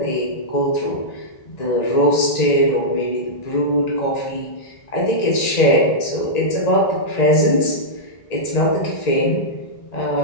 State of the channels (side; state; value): right; late; 1.9 ms